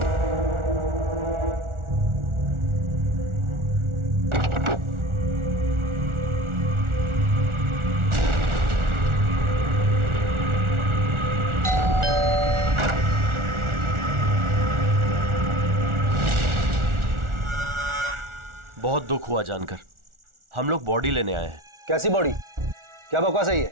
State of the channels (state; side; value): late; left; 1.4 ms